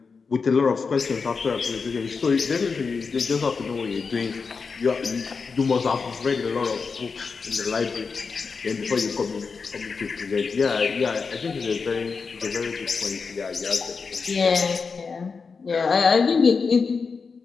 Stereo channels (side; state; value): right; quieter; 5.0 dB